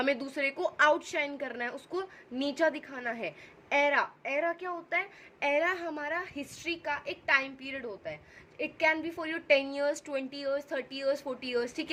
दूसरे को आउटशाइन करना है, उसको नीचा दिखाना है. एरा, एरा क्या होता है? एरा हमारा हिस्ट्री का एक टाइम पीरियड होता है. It can be for your 10 years, 20 years, 30 years, 40 years. ठीक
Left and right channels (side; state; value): both; identical; correlation 1.00